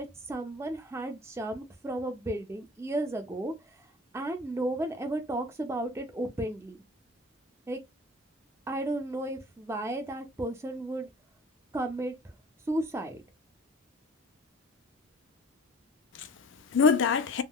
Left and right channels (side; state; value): both; normal; correlation 0.45